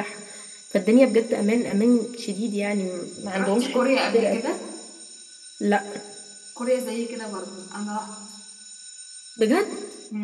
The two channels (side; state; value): both; identical; correlation 1.00